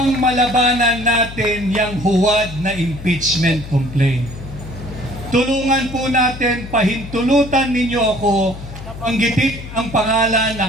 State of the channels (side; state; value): left; noise; hum, 12 dB below the sound